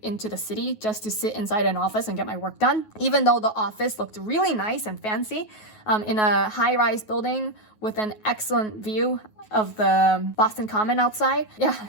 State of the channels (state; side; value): late; right; 9.4 ms